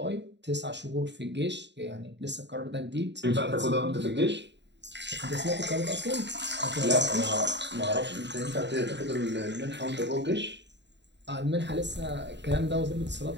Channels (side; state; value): left; late; 0.51 ms